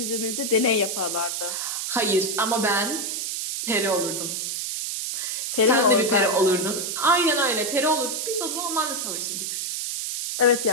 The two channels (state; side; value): noise; right; hiss, 3 dB below the sound